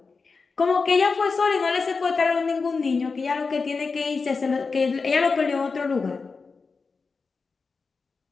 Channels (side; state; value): right; quieter; 4.6 dB